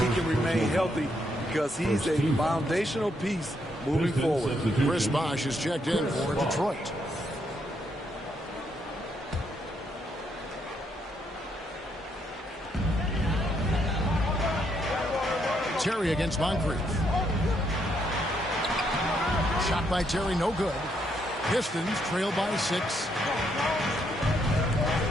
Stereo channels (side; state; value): both; normal; correlation 0.75